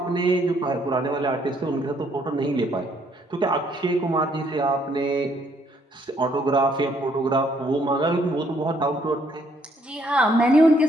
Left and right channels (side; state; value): both; normal; correlation 0.68